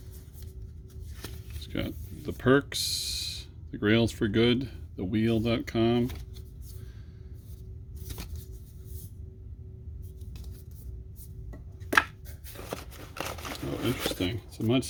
It's got the perks, the grails for good, the wheel.com. Oh, interesting. It's a much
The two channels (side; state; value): both; identical; correlation 1.00